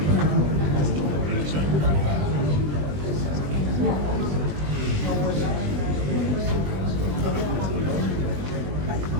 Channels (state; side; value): late; left; 20 ms